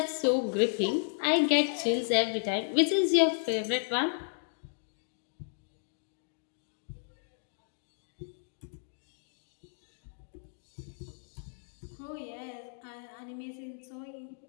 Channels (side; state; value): right; silent; digital silence